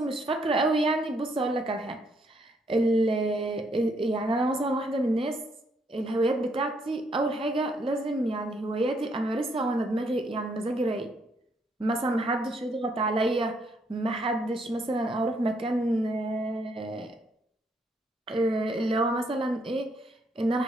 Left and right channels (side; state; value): both; normal; correlation 0.72